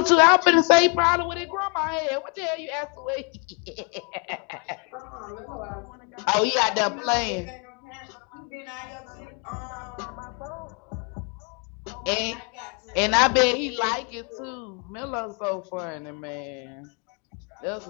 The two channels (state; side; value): quieter; right; 35.0 dB